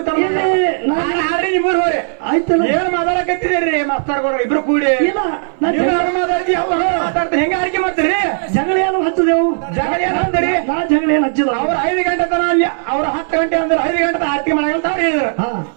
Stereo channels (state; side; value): silent; left; 63 dB below the other